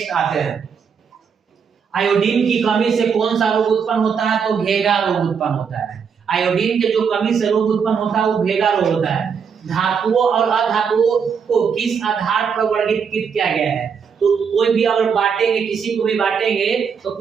आते हैं, आयोडीन की कमी से कौन सा रोग उत्पन्न होता है? तो भेगा रोग उत्पन्न होता है। आयोडीन के जो कमी से रोग उत्पन्न होता है वो भेगा रोग होता है। धातुओं और अधातुओं को किस आधार पर वर्गीकृत किया गया है? तो कोई भी अगर बांटेंगे, किसी को भी बांटेंगे तो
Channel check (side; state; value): left; quieter; 6.5 dB